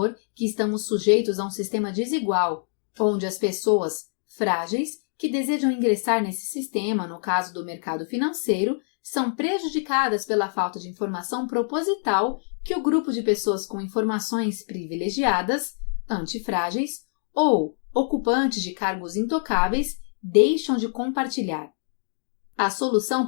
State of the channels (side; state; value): right; silent; digital silence